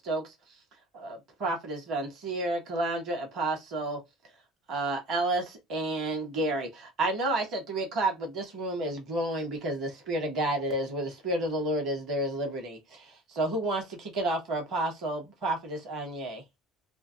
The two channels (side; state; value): both; normal; correlation 0.40